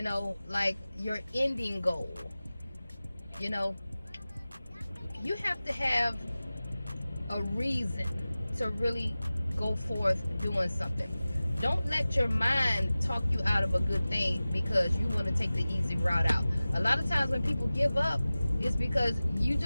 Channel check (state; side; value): inverted; both; correlation -0.97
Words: like your ending goal. You know, you have to have a reason to really go forth doing something. Don't let your mind talk you out of a good thing because you want to take the easy route out. A lot of times when people give up, it's because you